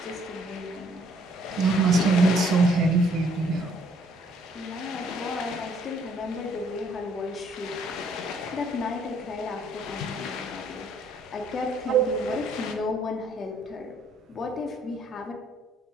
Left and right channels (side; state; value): both; normal; correlation 0.65